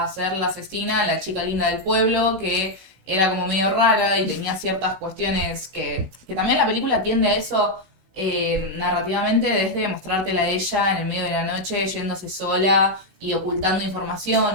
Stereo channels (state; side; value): late; left; 16 ms